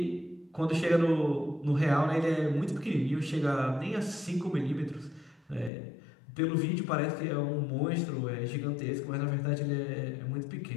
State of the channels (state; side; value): drops out; right; at 5.7 s